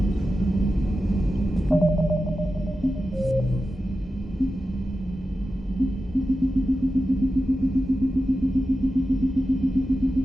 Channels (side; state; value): both; normal; correlation 0.92